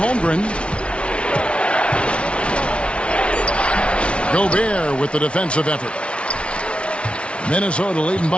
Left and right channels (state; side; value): late; right; 0.059 ms